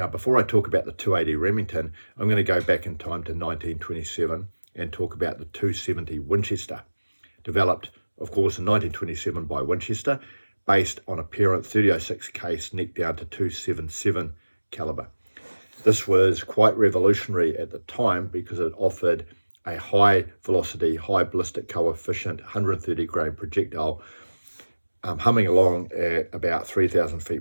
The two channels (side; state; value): both; inverted; correlation -1.00